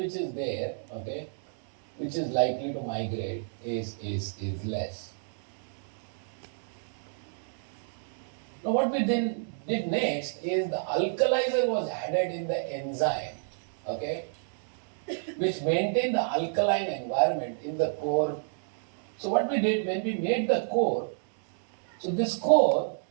is there, okay, which is likely to migrate is less. Now what we did next is the alkalizer was added in the enzyme, okay, which maintained the alkaline environment in the core. So what we did when we made the core, so this core,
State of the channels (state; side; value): silent; left; digital silence